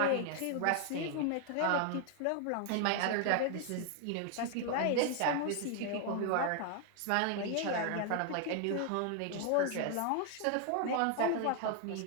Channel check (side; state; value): both; different; correlation 0.00